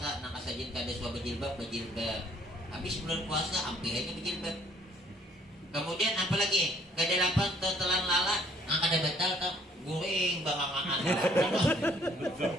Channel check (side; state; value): both; normal; correlation 0.60